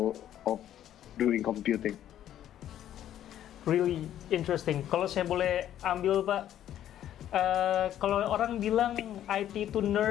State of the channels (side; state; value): right; quieter; 11.4 dB